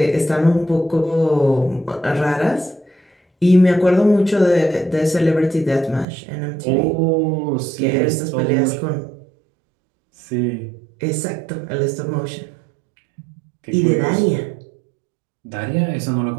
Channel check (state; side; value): drops out; left; at 6.1 s